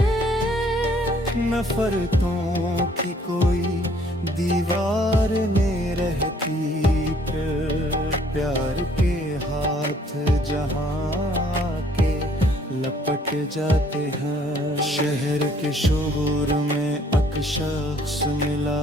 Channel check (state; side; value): normal; both; correlation 0.61